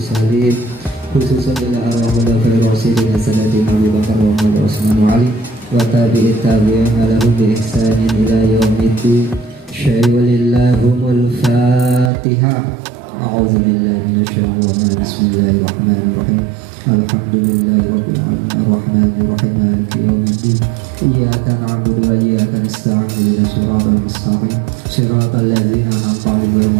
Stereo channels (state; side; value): drops out; left; at 12.1 s